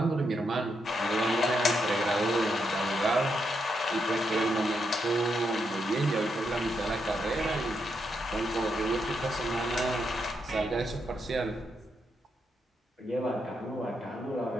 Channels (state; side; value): normal; both; correlation 0.81